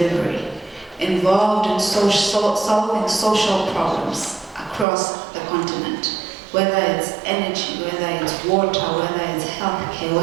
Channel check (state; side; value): drops out; left; at 4.9 s